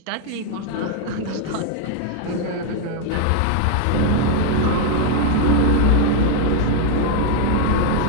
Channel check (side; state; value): both; different; correlation 0.00